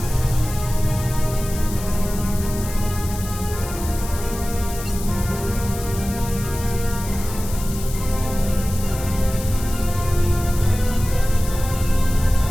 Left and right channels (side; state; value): left; noise; hiss, 12 dB below the sound